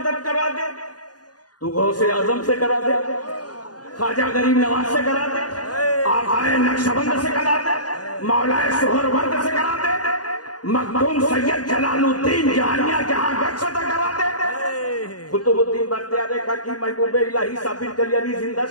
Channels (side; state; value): right; late; 0.69 ms